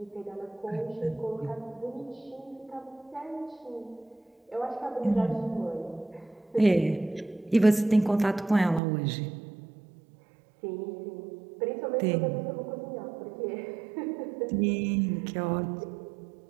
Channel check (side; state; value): left; drops out; at 8.8 s